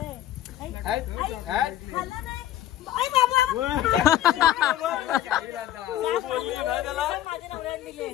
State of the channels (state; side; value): quieter; right; 12.7 dB